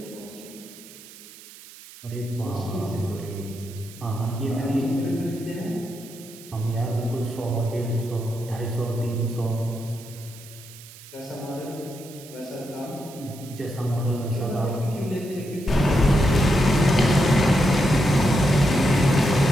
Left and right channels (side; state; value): right; noise; hiss, 19 dB below the sound